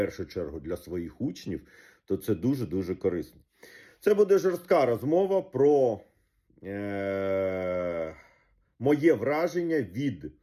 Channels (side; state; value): both; identical; correlation 1.00